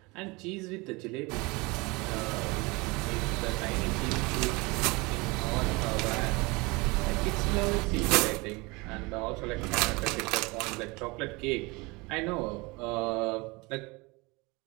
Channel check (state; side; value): quieter; left; 25.4 dB